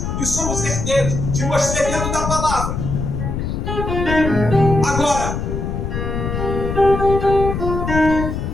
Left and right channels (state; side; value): noise; left; rumble, 3 dB below the sound